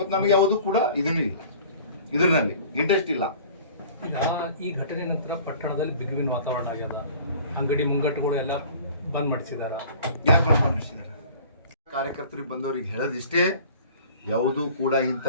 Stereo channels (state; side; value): inverted; both; correlation -0.47